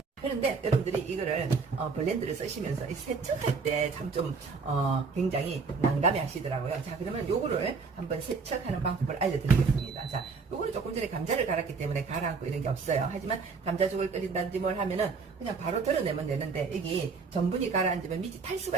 그런데 여러분들이 이거를 블렌드를 쓰시면서 세척할 때 참 좀 굉장히 난감해 하시더라고요. 자, 그러면 요거를 한번 세척하는 방법을 알려드리겠습니다. 자, 요거는 조금 전에 감자를 갈았기 때문에 가라앉고 이런 게 없어요. 하지만 감자죽을 끓인다든지 뭘 하면은 그냥 바로 덜어내면 되는데, 여기 전분이 가라앉으면 밑이 탈 수가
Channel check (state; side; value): quieter; left; 4.8 dB